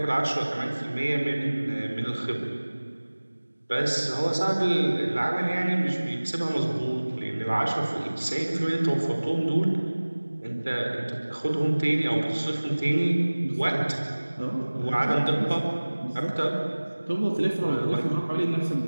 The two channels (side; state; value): both; inverted; correlation -1.00